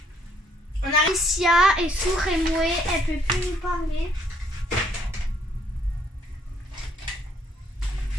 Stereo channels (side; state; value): both; normal; correlation 0.67